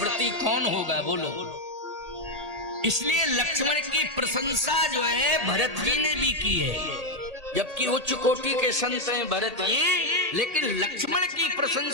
कौन होगा? बोलो। इसलिए लक्ष्मण की प्रशंसा जो है भरत जी ने भी की है, जबकि उच्च कोटि के संत हैं भरत जी, लेकिन लक्ष्मण की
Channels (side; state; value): left; late; 1.8 ms